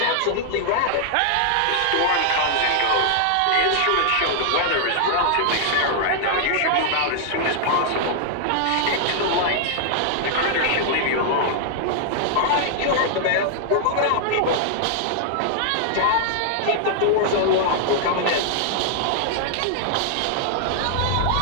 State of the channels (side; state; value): both; different; correlation -0.01